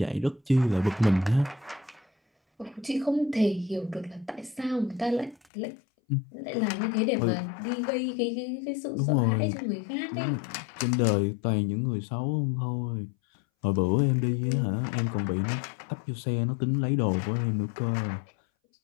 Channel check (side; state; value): right; drops out; at 5.5 s